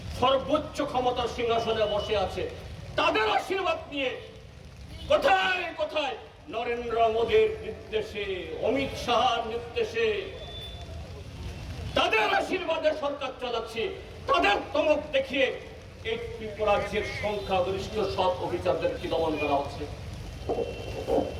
সর্বোচ্চ ক্ষমতার সিংহাসনে বসে আছে, তাদের আশীর্বাদ নিয়ে কোথায় কোথায় নরেন্দ্র মোদীর নির্দেশে, অমিত শাহর নির্দেশে, তাদের আশীর্বাদে সরকার চালাচ্ছে। তাদের তমক দেখিয়ে এই ত্রিপুরাজ্যের সংখ্যাগরিষ্ঠ সব অফিসারদেরকে দমন করা হচ্ছে।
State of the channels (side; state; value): both; identical; correlation 1.00